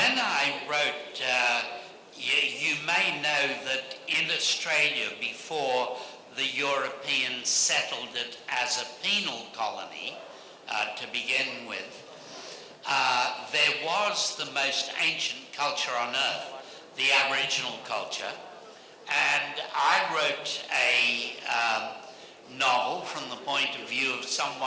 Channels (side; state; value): both; identical; correlation 1.00